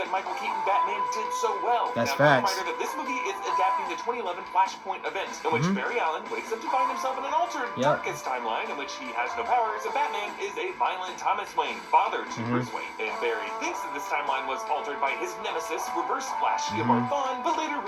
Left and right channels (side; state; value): both; identical; correlation 1.00